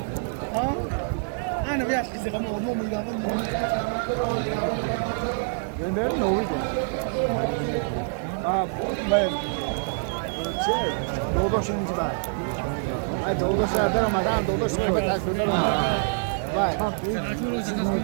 Ha? Ana bir kızı ama olma mı ya? Ben ne oldu? Ben doğdu şimdi var. Ay doğdu şehirde Ramazan doğdu şehirde tasvirler var. Vay.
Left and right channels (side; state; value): left; silent; 57 dB below the other